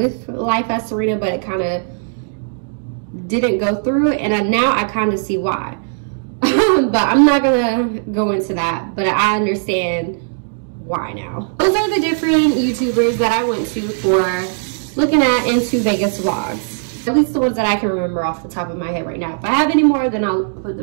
Life as Serena, but it kind of didn't go through, and now I kind of see why. But I'm not gonna go into that, but I understand why now. Those are the different YouTubers that I went to for looking at into Vegas vlogs. At least the ones that I can remember off the top of my head right now. If I have any more, then I'll put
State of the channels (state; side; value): silent; left; digital silence